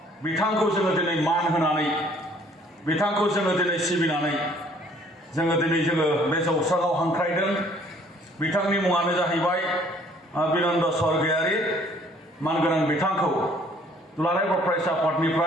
बिथांखौ जोङो दिनै मान होनानै, बिथांखौ जोङो दिनै सिबिनानै जोङो बे जौस्राङाव हांख्रायदों। बिथांनि मुङानो जाहैबाय बिनन्द स्वर्गियारि। मानगोनां बिथांखौ दुलाराय बर' फरायसा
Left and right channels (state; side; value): normal; both; correlation 0.59